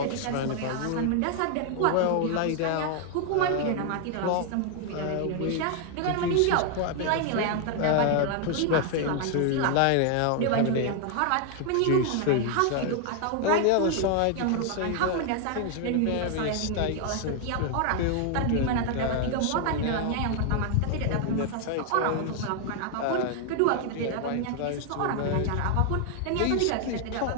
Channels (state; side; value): different; both; correlation 0.00